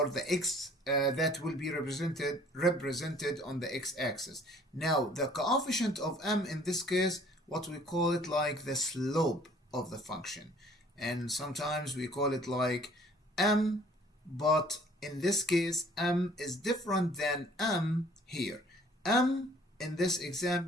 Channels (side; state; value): both; normal; correlation 0.55